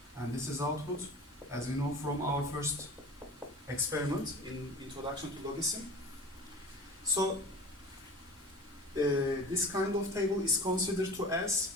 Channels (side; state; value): both; normal; correlation 0.38